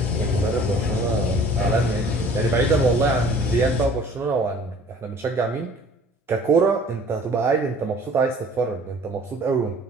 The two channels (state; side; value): normal; both; correlation 0.50